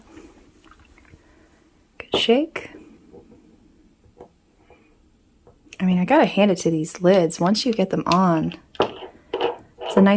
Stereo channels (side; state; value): both; identical; correlation 1.00